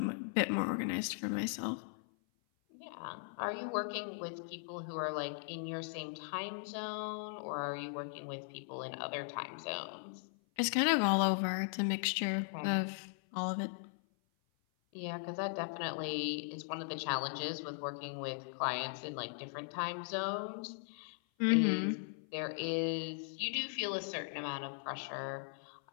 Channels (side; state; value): right; silent; 52 dB below the other